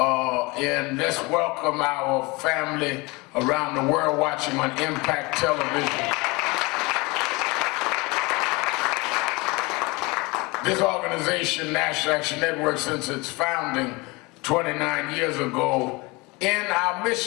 let's welcome our family around the world watching on Impact Television. This organization, National Action Network, since its founding 29 years ago, in our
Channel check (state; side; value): quieter; right; 25.1 dB